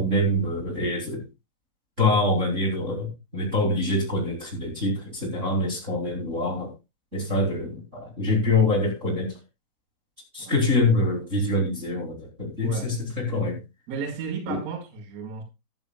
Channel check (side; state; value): left; late; 3.7 ms